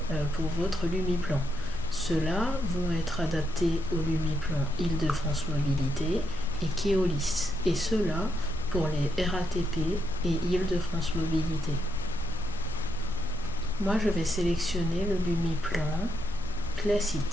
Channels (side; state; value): both; normal; correlation 0.80